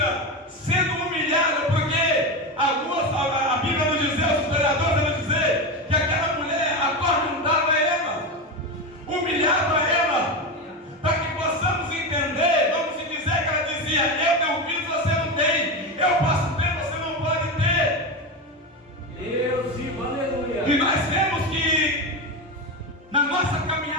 sendo humilhada, porque a Bíblia nos diz, os historiadores nos dizer que aquela mulher atormentava ela, humilhava ela, para que possamos entender. Vamos dizer que ela dizia: eu tenho filho, você não tem, eu posso ter, você não pode ter. Deus vivo, aleluia. E nós vemos que na nossa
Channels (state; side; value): normal; both; correlation 0.17